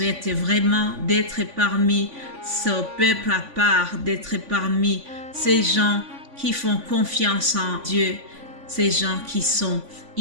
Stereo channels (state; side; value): late; left; 3.5 ms